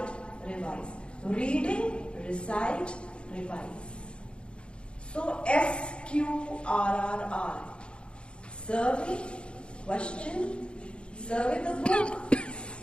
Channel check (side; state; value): right; late; 0.056 ms